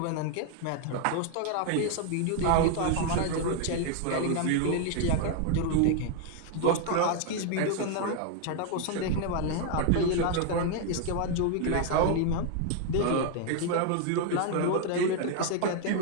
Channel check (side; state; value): both; different; correlation 0.00